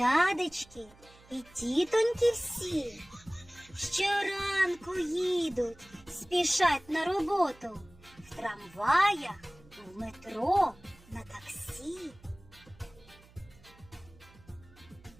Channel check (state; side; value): noise; right; hum, 25 dB below the sound